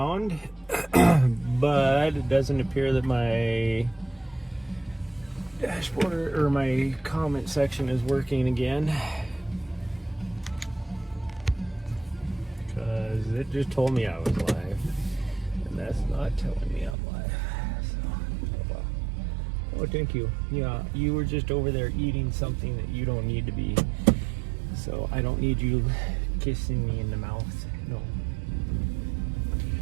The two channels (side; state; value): left; drops out; at 16.9 s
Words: but it doesn't appear that my dashboard or my comment section is working again, because it just told me I was live, and that's not telling me I'm live. So, oh well. Oh, thank you. Yeah, you were just over there eating something that you don't need to be. So I don't need you kissing me in the mouth. No.